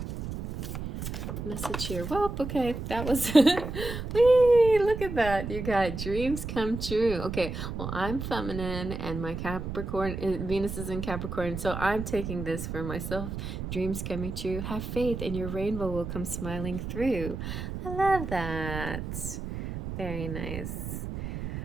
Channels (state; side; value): noise; right; rumble, 6 dB below the sound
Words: message here? Well, okay, that was whee, look at that. You got dreams come true. Okay, well, I'm feminine and my Capricorn, Venus is in Capricorn, so I'm taking this for myself. Dreams coming true. Have faith and your rainbow will come smiling through. I love that. Very nice.